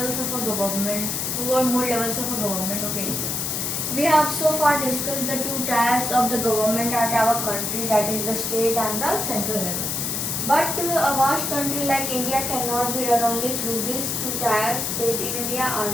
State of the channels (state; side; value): noise; left; hiss, 1 dB below the sound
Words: of a government, two or more levels of a government. Okay. We have so far discussed the two tiers of the government at our country, that is the state and the central level. But a vast country like India cannot be run only through these two tiers. State in India are